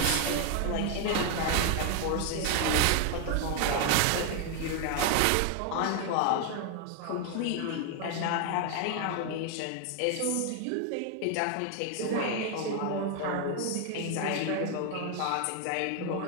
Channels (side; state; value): both; different; correlation 0.00